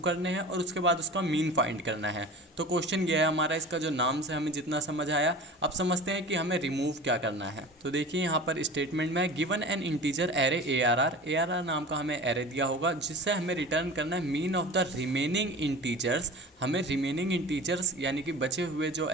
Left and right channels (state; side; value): normal; both; correlation 0.37